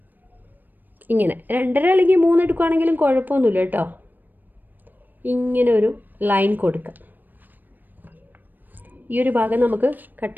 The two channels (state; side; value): late; left; 0.089 ms